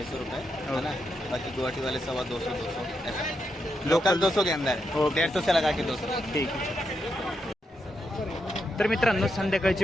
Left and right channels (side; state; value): both; normal; correlation 0.83